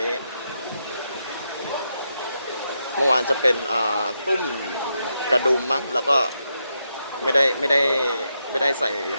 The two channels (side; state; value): both; inverted; correlation -0.83